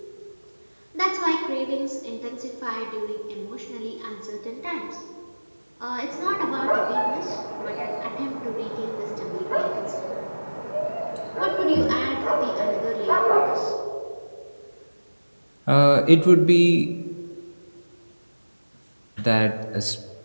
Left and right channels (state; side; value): inverted; both; correlation -1.00